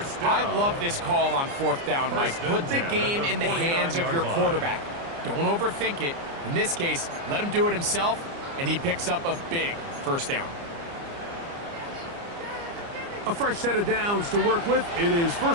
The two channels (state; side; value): late; left; 29 ms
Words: I love this call on 4th down, Mike. Put the game in the hands of your quarterback. Don't overthink it. In this case, let him do it himself, and he picks up a big first down. A fresh set of downs to work with. It is